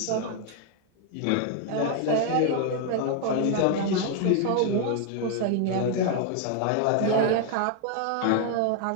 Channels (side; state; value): both; different; correlation 0.00